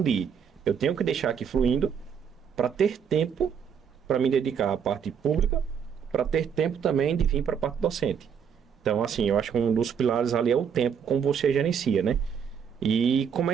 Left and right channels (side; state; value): left; quieter; 7.4 dB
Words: de eu tenho que deixar aqui fluindo para ter tempo para me dedicar à parte pública, para ter tempo também de vir para a parte docente. Então, assim, eu acho que um dos pilares ali é o tempo, como você gerencia, né? E